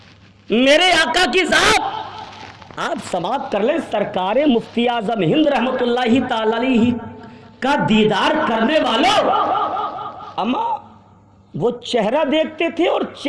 آپ سماعت کر لیں، سرکار مفتی اعظم ہند رحمت اللہ تعالی علیہ کا دیدار کرنے والوں، اما وہ چہرہ دیکھتے تھے اور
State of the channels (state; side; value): identical; both; correlation 1.00